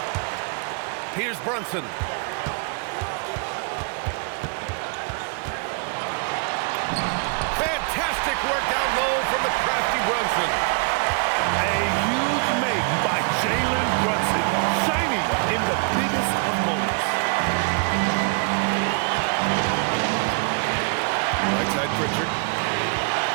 Here's Brunson. Fantastic work down low from the crafty Brunson. A huge make by Jalen Brunson, shining in the biggest of moments. Right side Pritchard.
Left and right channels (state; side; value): quieter; left; 36.4 dB